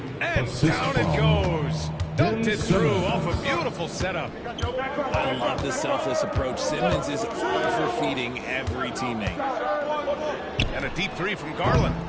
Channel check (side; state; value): both; identical; correlation 1.00